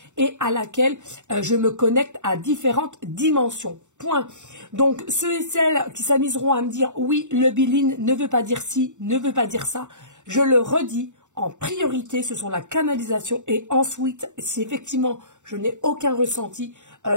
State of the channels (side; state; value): left; late; 0.84 ms